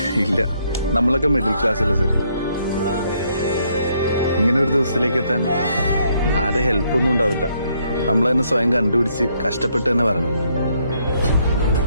ഇല്ല, നമ്മളൊക്കെ മിഡിൽ ക്ലാസ് അല്ലേ സർ. ഇങ്ങനെ ഒരു ദിവസത്തിലേക്ക് എത്താൻ ആരെ ഹെൽപ്പൊന്നും ഉണ്ടാവില്ല. നമ്മൾ തന്നെ സ്വയം കണ്ടുപിടിച്ച് കഷ്ടപ്പെട്ട് തന്നെ വരണം.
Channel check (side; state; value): both; inverted; correlation -0.71